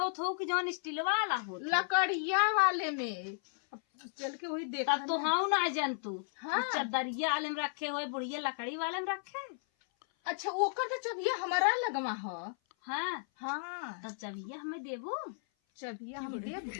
तो कि जौन स्टील वाला हो, लकड़िया वाले में चल के वही देखा। तब तो हाँ ना जंतु। हाँ। चदरिया वाले में रखे हुए, बुढ़िया लकड़ी वाले में रखे। अच्छा ओकर तो चबिया हमारा लगवा ह। हाँ हाँ तब चबिया हमें देबो। चबिया हम दे,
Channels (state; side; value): silent; right; 55 dB below the other